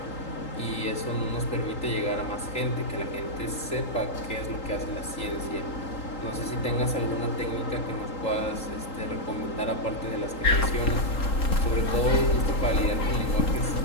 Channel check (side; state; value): right; late; 3.8 ms